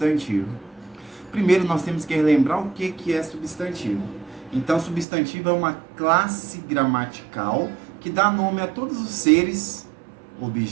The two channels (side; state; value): left; drops out; at 5.1 s